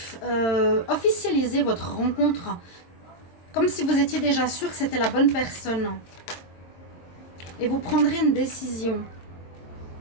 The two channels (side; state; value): right; late; 22 ms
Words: officialiser votre rencontre. Comme si vous étiez déjà sûr que c'était la bonne personne. Et vous prendrez une décision.